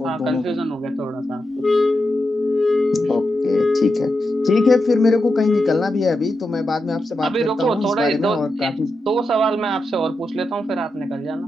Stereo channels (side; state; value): both; normal; correlation 0.87